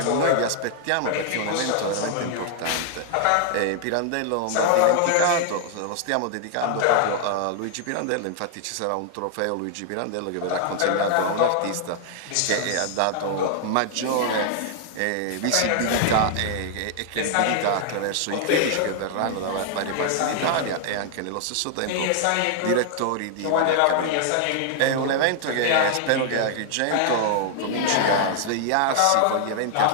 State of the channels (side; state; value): both; different; correlation 0.00